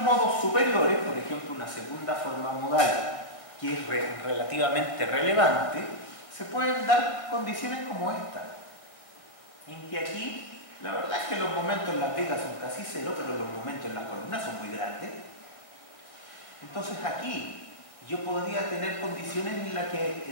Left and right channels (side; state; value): right; late; 1.6 ms